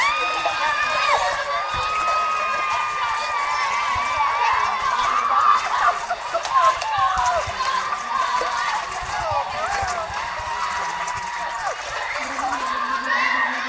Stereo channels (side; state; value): both; identical; correlation 1.00